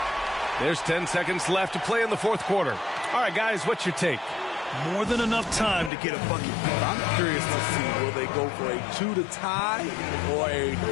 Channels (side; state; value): right; drops out; at 5.9 s